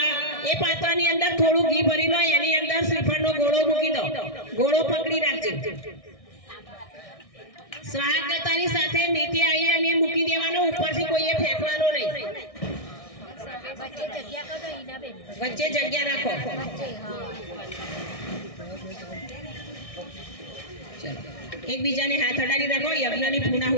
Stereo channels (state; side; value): late; right; 1.6 ms